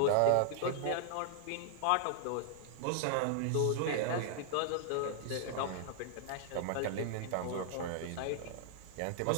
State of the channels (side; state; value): both; different; correlation 0.00